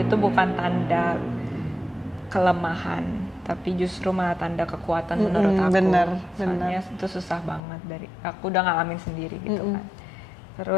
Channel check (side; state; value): right; drops out; at 7.6 s